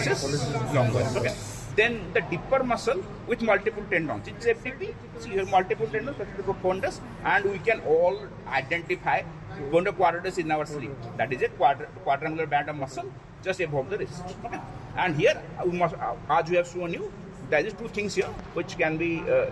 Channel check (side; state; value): both; identical; correlation 1.00